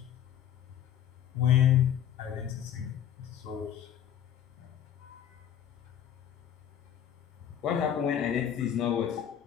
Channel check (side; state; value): right; quieter; 9.9 dB